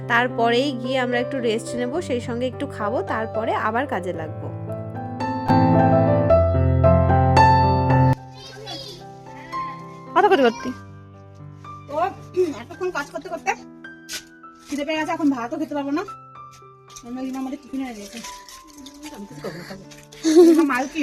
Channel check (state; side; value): identical; both; correlation 1.00